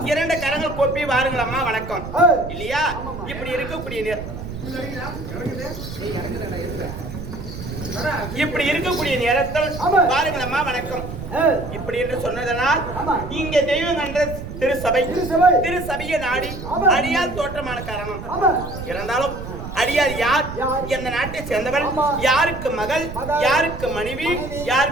இரண்டு கரங்கள் கோப்பி வாருங்களம்மா வணக்கம் இல்லையா? இப்படி இருக்கக்கூடிய நேரத்தில் பாருங்களம்மா வணக்கம் இப்படி என்று சொன்னதனால் இங்கே தெய்வம் என்ற திருசபையை நாடி அடியார் தோற்றமான காரணம். இருந்தாலும் அடியார் யார்? எந்த நாட்டை சேர்ந்தவள்? யாருக்கு மகள்? யாருக்கு மனைவி?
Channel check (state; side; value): noise; right; rumble, 9 dB below the sound